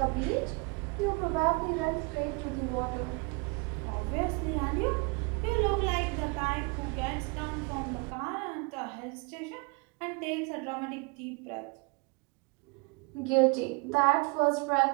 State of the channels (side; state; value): left; quieter; 30.4 dB